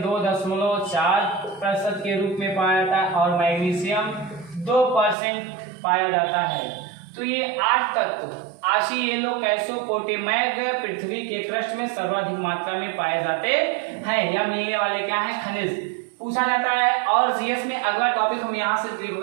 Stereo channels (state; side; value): drops out; left; at 5.2 s